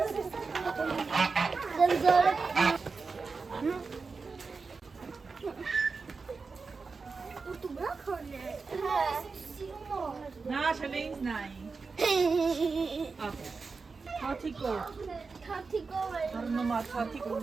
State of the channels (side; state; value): left; quieter; 4.5 dB